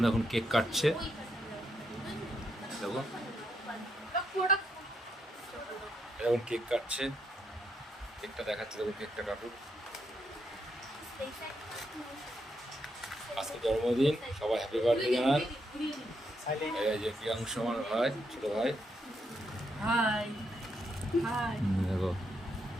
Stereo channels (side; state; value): both; normal; correlation 0.79